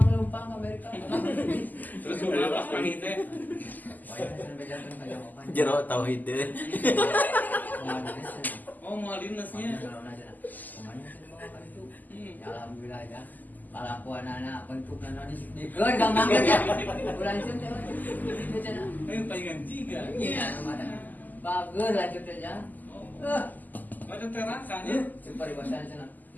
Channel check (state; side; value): late; right; 0.084 ms